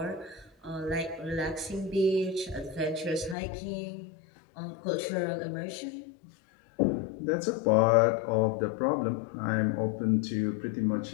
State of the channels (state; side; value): drops out; right; at 3.4 s